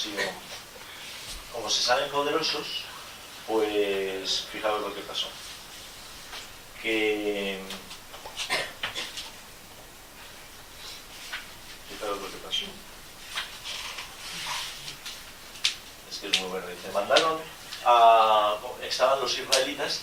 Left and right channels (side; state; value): both; identical; correlation 1.00